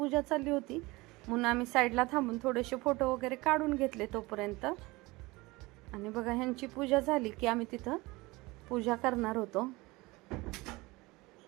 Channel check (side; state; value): left; quieter; 22.3 dB